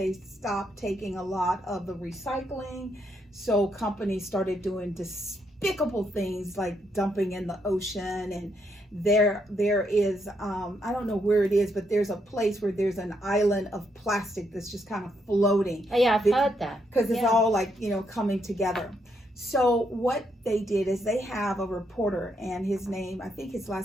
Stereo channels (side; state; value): both; normal; correlation 0.77